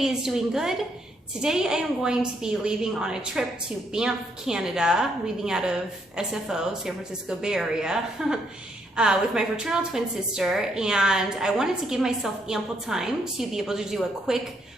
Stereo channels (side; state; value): both; normal; correlation 0.74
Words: is doing good. Today I am going to be leaving on a trip to Banff, Canada, leaving out of SFO, San Francisco Bay Area, with my fraternal twin sister, and I wanted to give myself ample time to be able to do a quick